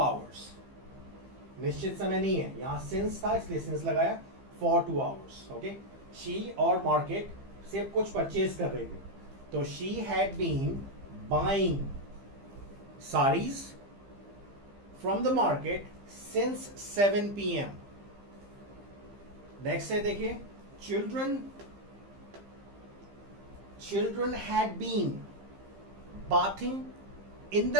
निश्चित समय नहीं है, यहां सिंस था इसलिए सिंस लगाया, फॉर 2 hours। ओके, शी और मार्केट से कुछ परचेज कर रहे थे, तो she had been buying saris from the market since 7 PM। Next है देखिए, children had been bathing in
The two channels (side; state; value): left; late; 15 ms